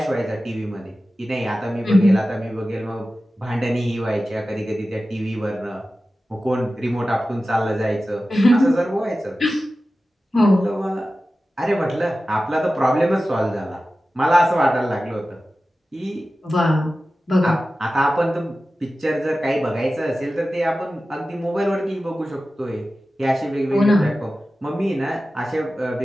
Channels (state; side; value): normal; both; correlation 0.95